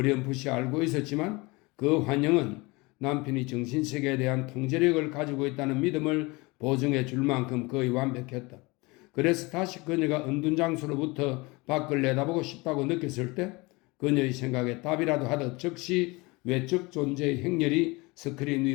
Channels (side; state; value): right; quieter; 24.7 dB